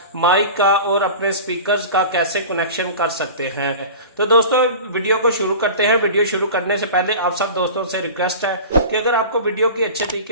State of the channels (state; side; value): inverted; both; correlation -0.35